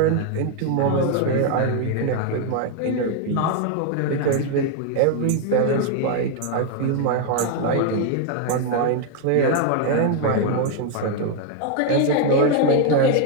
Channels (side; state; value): both; different; correlation 0.00